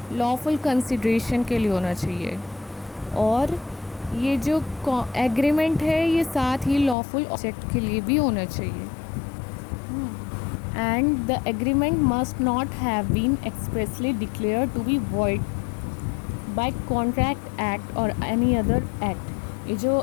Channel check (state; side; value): drops out; right; at 7.0 s